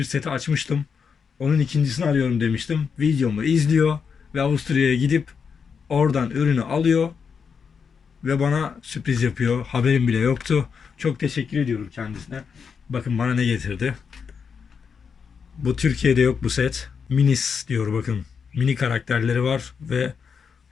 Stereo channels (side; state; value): right; quieter; 6.2 dB